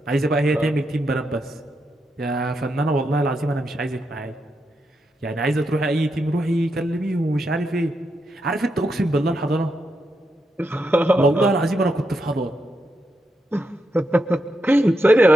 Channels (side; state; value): both; normal; correlation 0.83